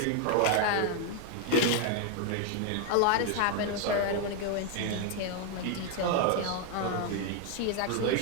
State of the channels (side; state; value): both; different; correlation 0.01